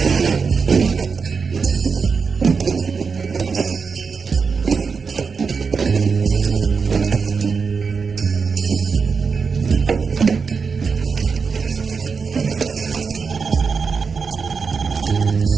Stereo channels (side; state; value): left; quieter; 5.3 dB